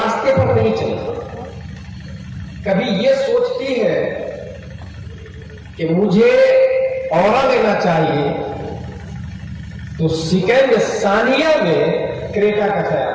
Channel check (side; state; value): both; identical; correlation 1.00